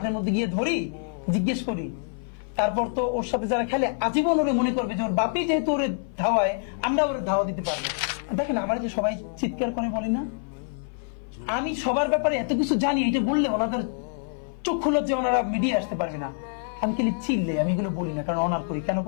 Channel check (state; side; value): silent; right; 57 dB below the other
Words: মধ্যে গিয়ে ধরি, জিজ্ঞেস করি, তারপর তো ওর সাথে যারা খেলে আজীবন ওরে মনে করবে যে ওর বাপি যেহেতু ওরে ধাওয়ায়, আমরা ওরে ধাওয়া দিতে পারবো। দেখেন আমার যে সবাই চিৎকার করে বলি না, আমি সবার ব্যাপারে এত কিছু জানি, এটা বললে ওনাদের চক্ষু লজ্জা, ওনারা মিডিয়া আসতে পারবে না। আমি খালি চিল্লে, আমি এগুলো বলি না, কারণ অনার করি। কেন